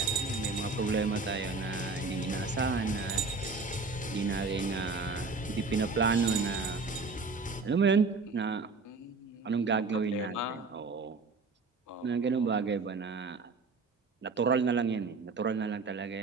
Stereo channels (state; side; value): quieter; left; 4.1 dB